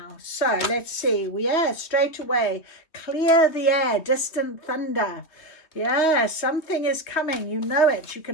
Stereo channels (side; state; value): right; late; 3.0 ms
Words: So let's see. Straight away. Clear the air. Distant thunder. Yeah, something is coming. You know it. You